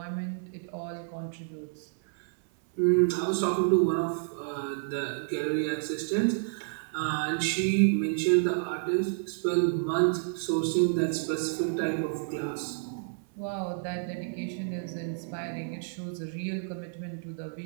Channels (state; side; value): silent; left; 57 dB below the other